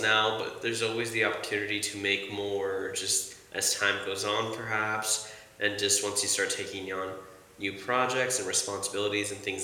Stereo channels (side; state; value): both; identical; correlation 1.00